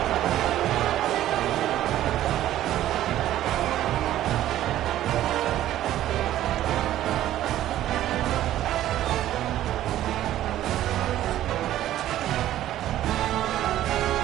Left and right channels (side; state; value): left; quieter; 13.1 dB